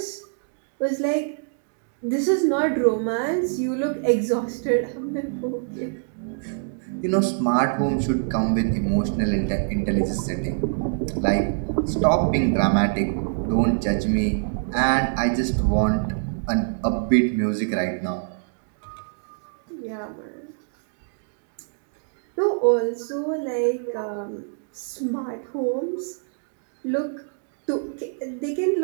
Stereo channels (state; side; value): silent; left; digital silence